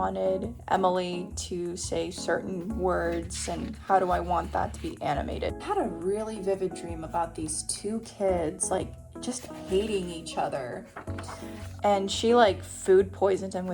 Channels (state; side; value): identical; both; correlation 1.00